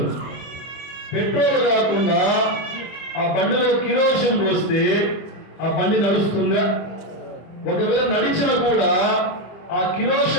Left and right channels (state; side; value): late; right; 25 ms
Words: పెట్రోల్ కాకుండా ఆ బండిలో కిరోసిన్ పోస్తే ఆ బండి నడుస్తుందా? ఒకవేళ నడిచిన కూడా ఆ